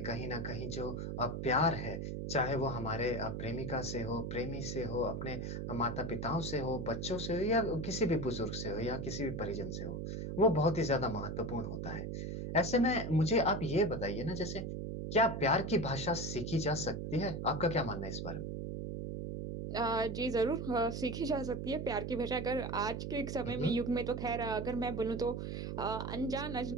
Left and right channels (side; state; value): right; noise; hum, 4 dB below the sound